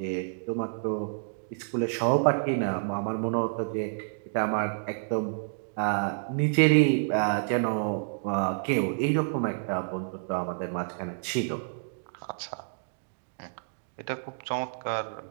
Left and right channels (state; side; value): silent; left; digital silence